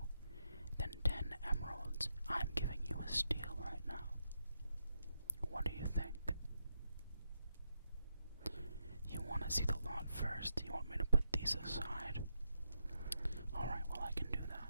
than 10 emeralds. I'm giving you a steal right now. What do you think? You want to see the lot first? You want me to put these aside? Alright, well, I can do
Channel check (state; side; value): inverted; both; correlation -0.83